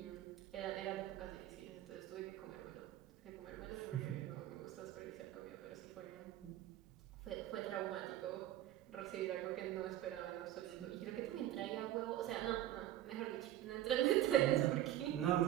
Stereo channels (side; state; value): left; quieter; 13.0 dB